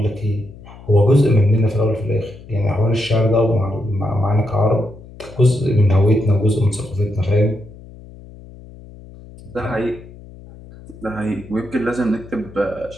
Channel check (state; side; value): noise; left; hum, 19 dB below the sound